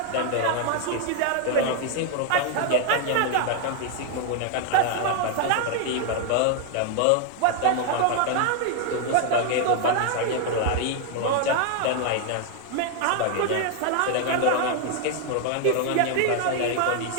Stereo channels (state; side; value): different; both; correlation 0.00